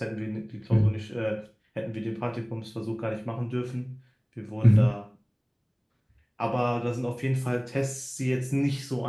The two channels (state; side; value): identical; both; correlation 1.00